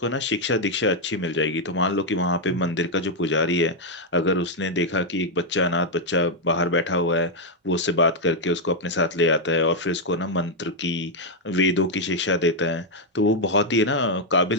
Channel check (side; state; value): both; normal; correlation 0.00